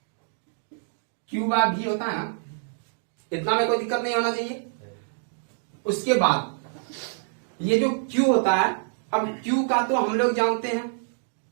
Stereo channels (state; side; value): silent; left; digital silence